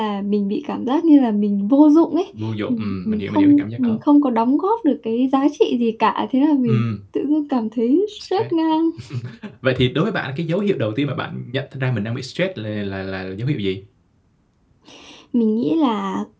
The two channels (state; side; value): identical; both; correlation 1.00